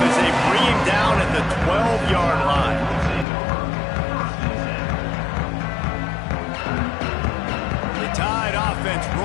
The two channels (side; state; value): right; drops out; at 3.2 s